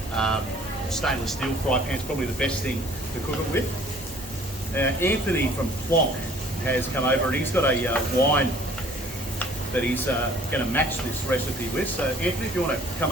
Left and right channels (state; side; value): normal; both; correlation 0.55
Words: stainless steel fry pan is probably the best thing to cook it with. Anthony from Plonk has come over and he's got a wine that he's going to match this recipe with. So Anthony, if you want to come